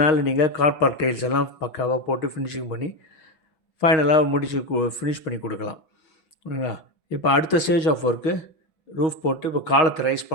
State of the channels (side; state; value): right; late; 6.3 ms